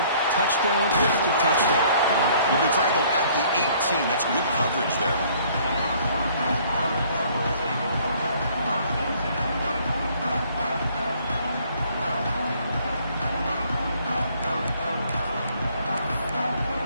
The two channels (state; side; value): inverted; both; correlation -0.59